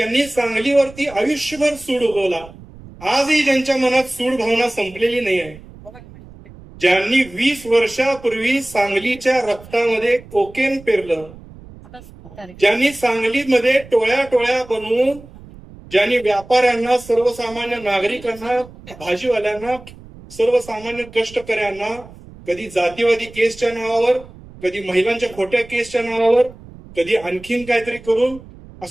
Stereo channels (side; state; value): right; noise; rumble, 19 dB below the sound